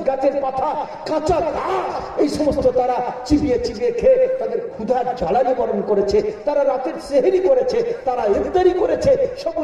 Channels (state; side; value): identical; both; correlation 1.00